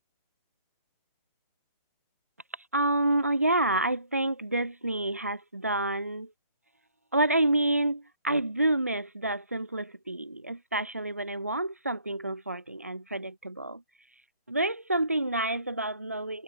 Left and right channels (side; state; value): both; inverted; correlation -0.63